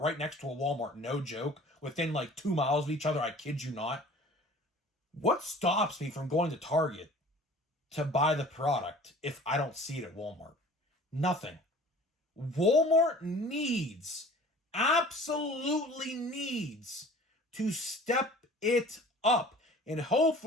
next to a Walmart, no joke, within like 2 miles of each other, I kid you not. What stops me from going to Target to buy the product if I don't see it at Walmart? Nothing. Walmart absolutely needs to step it up. And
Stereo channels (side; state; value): both; normal; correlation 0.46